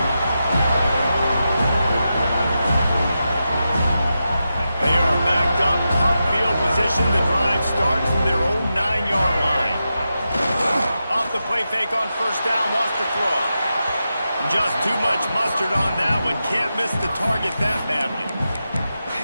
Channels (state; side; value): inverted; both; correlation -0.89